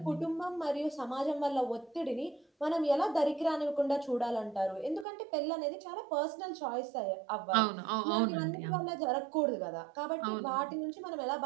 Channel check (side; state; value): left; drops out; at 5.1 s